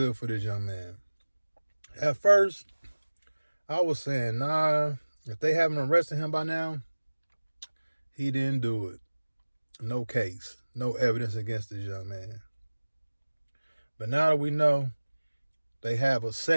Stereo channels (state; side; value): inverted; both; correlation -1.00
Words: for this young man. At first, I was saying, nah, if they haven't arrested him by now, he didn't do it. No case, no evidence against this young man. But now that we know they have a